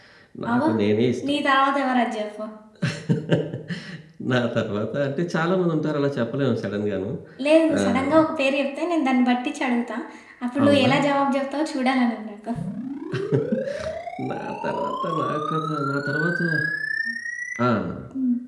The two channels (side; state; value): both; identical; correlation 1.00